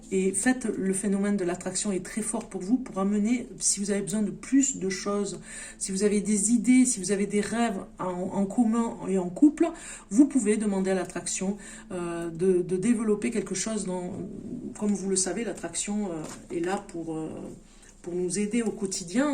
et faites le phénomène de l'attraction est très fort pour vous pour amener, si vous avez besoin de plus de choses, si vous avez des idées, si vous avez des rêves en commun et en couple, vous pouvez demander à l'attraction de développer quelque chose comme vous le savez, l'attraction est là pour nous aider au quotidien,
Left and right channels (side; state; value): both; identical; correlation 1.00